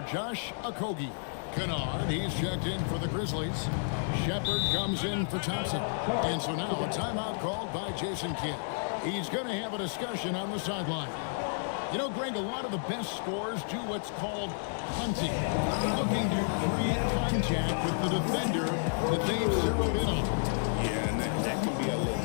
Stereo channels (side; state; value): right; silent; digital silence